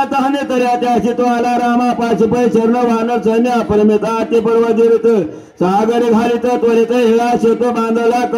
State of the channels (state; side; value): identical; both; correlation 1.00